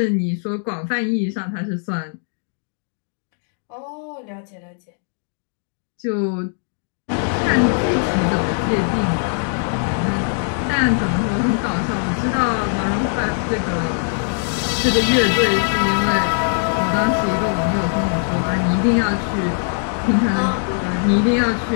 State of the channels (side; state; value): right; silent; 60 dB below the other